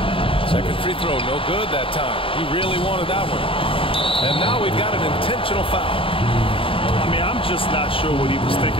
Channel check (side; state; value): right; late; 0.26 ms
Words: Second free throw, no good that time. He really wanted that one. And now we've got an intentional foul. I mean, I'm just not sure what he was